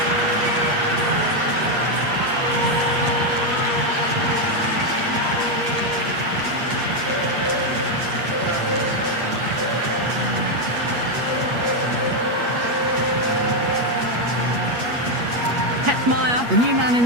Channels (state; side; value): late; left; 8.4 ms